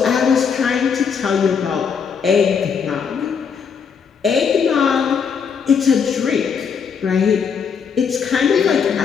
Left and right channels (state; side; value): quieter; right; 6.5 dB